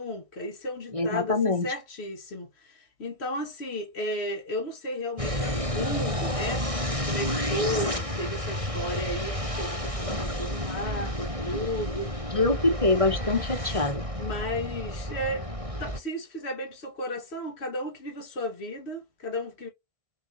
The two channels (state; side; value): late; left; 1.6 ms